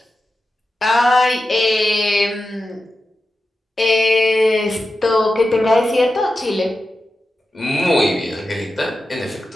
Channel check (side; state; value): both; normal; correlation 0.91